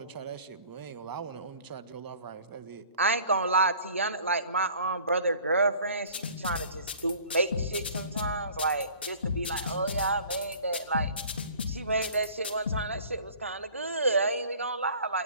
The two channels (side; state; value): both; inverted; correlation -0.49